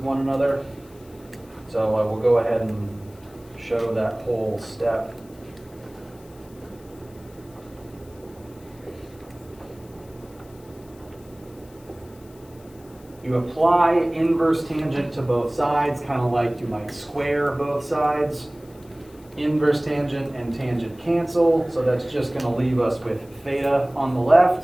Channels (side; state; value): left; noise; hiss, 27 dB below the sound